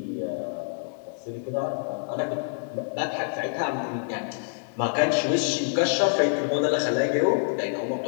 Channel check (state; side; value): silent; right; digital silence